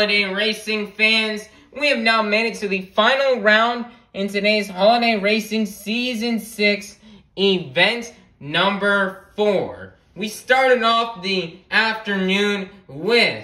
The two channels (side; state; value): both; identical; correlation 1.00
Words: racing fans, we have now made it to the final round in today's Holiday Racing Season 6 event number 4. We started off the afternoon with